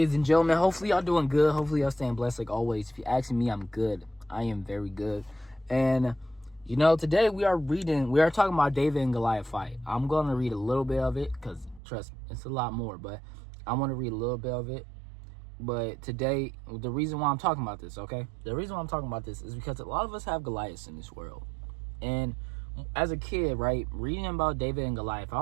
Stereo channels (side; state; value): left; drops out; at 11.8 s